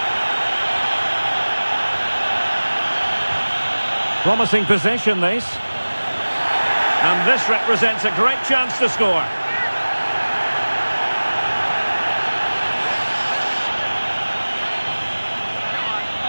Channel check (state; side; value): inverted; both; correlation -1.00